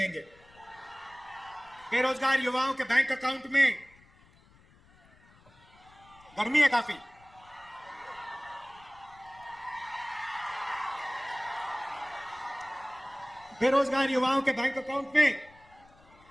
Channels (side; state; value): left; noise; rumble, 27 dB below the sound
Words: बेरोजगार युवाओं के बैंक अकाउंट में, गर्मी है काफी, बेरोजगार युवाओं के बैंक